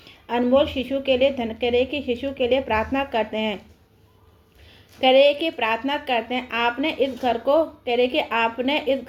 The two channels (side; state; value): both; identical; correlation 1.00